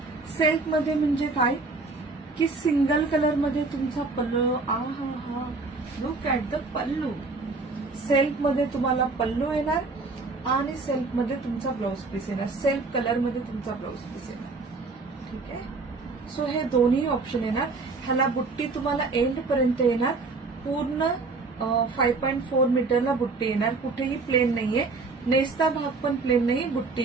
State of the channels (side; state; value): left; quieter; 3.8 dB